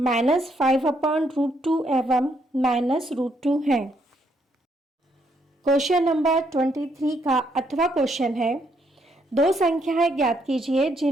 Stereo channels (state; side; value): normal; both; correlation 0.73